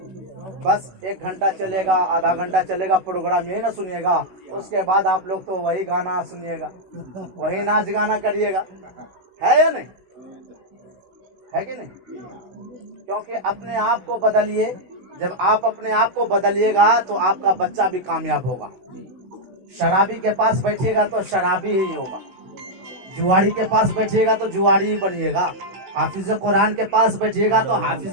बस 1 घंटा चलेगा, आधा घंटा चलेगा प्रोग्राम, यही ना सुनिएगा। उसके बाद आप लोग तो वही गाना सुनिएगा, वही नाच गाना करिएगा, है या नहीं, है कि नहीं? क्योंकि अपने आप को बदलिए। जब आप अपने आप को बदलिएगा तो आपका बच्चा भी कामयाब होगा। शराबी के पास बैठिएगा तो शराबी ही होगा, जुआरी के पास बैठिएगा तो जुआरी ही बनिएगा, हाफिज कुरान के पास बैठिएगा तो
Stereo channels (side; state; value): left; late; 16 ms